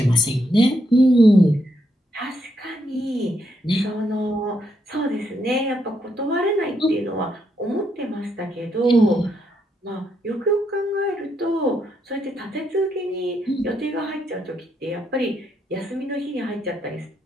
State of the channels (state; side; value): normal; both; correlation 0.78